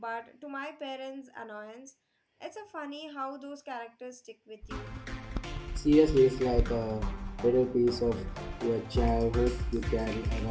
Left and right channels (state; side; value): identical; both; correlation 1.00